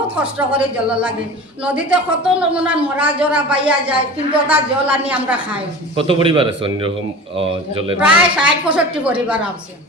কষ্ট করে জল লাগে। নদীতে কত নমুনার মরা জরা পাইয়া যায়, কিন্তু ওটা জল আনি আমরা খাই। কত পরিবার আছে অন্যরকম জলের? প্রায় 60-65 পরিবার আছে।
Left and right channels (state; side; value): normal; both; correlation 0.36